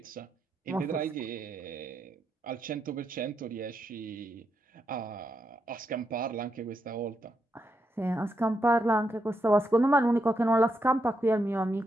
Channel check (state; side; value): normal; both; correlation 0.82